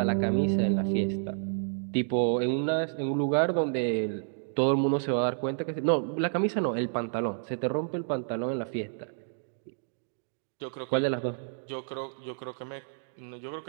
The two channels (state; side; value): silent; left; digital silence